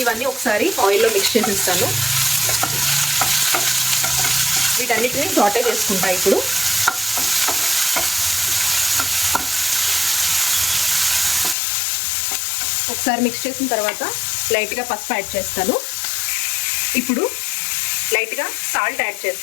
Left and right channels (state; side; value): drops out; right; at 11.6 s